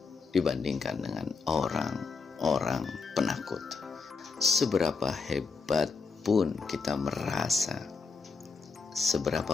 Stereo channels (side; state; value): right; quieter; 4.6 dB